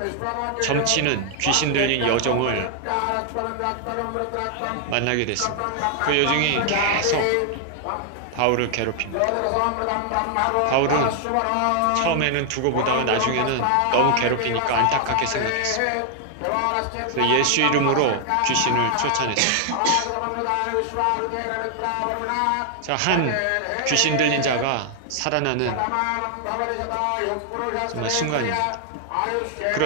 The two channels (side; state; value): both; different; correlation 0.00